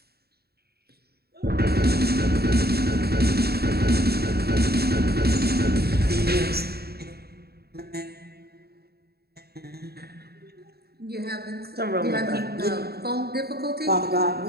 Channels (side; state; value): left; late; 0.46 ms